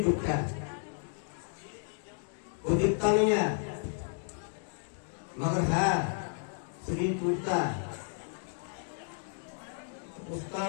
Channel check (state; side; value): silent; right; digital silence